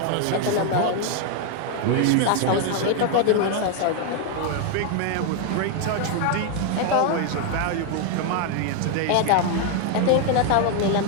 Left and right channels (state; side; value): different; both; correlation 0.00